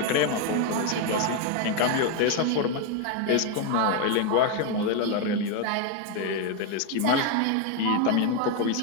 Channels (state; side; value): different; both; correlation 0.01